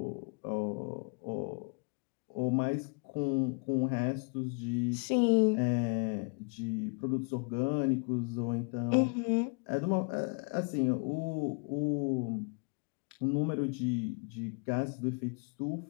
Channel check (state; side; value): quieter; right; 35.5 dB